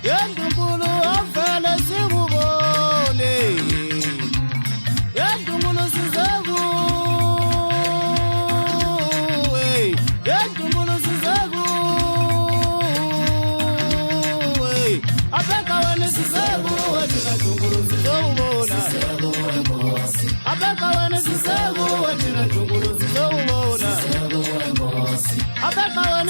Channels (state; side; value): inverted; both; correlation -1.00